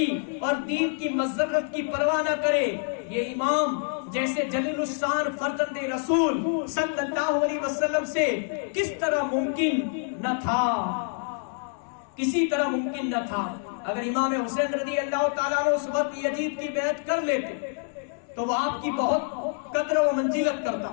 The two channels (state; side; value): silent; right; 58 dB below the other